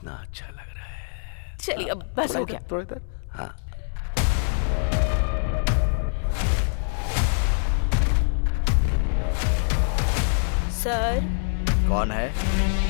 अच्छा लग रहा है। चलिए अब बस थोड़ा हो इधर, गया। थोड़ा इधर। हाँ। सर, कौन है?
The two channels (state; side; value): silent; right; 62 dB below the other